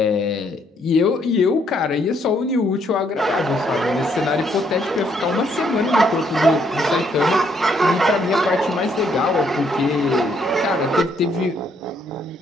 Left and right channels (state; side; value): normal; both; correlation 0.70